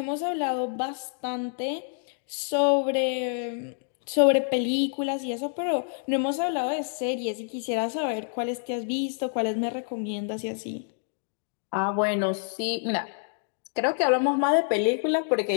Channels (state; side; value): silent; right; digital silence